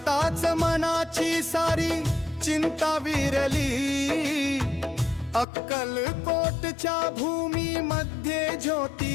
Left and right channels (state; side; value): drops out; right; at 5.5 s